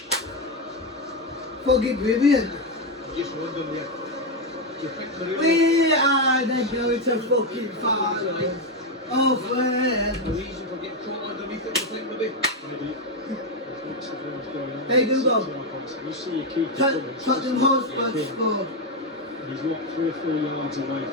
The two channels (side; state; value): both; normal; correlation 0.07